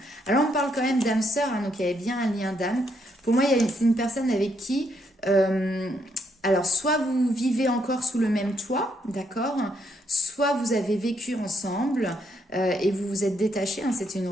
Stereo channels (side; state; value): both; normal; correlation 0.75